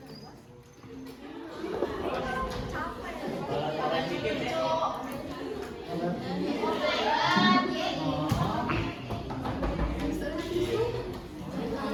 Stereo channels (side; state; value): both; identical; correlation 1.00